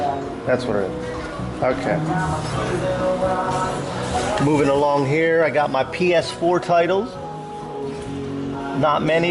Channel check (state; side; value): identical; both; correlation 1.00